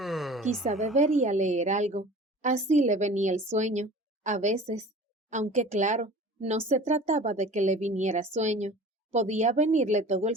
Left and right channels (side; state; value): both; normal; correlation 0.42